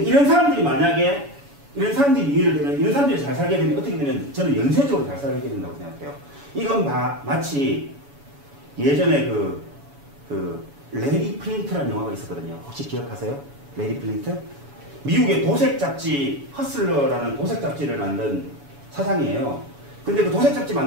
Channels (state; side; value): late; left; 7.1 ms